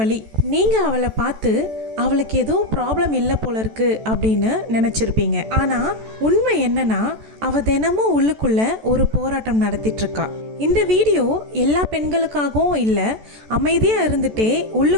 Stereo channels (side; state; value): left; late; 14 ms